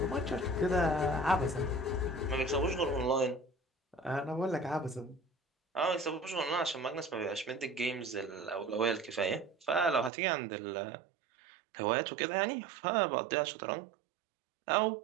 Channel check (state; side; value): drops out; left; at 10.1 s